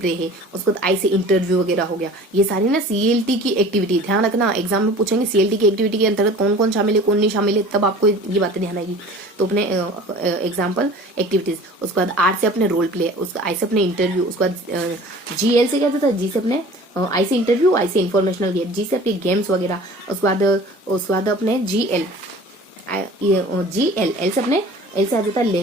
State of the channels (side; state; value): both; normal; correlation 0.43